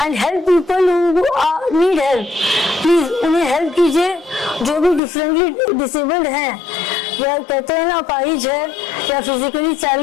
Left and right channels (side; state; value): right; drops out; at 5.0 s